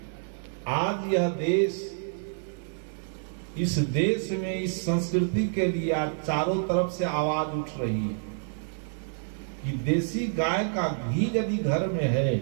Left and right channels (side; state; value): left; silent; digital silence